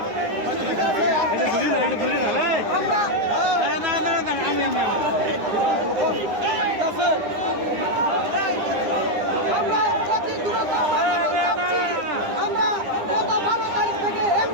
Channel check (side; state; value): left; late; 9.8 ms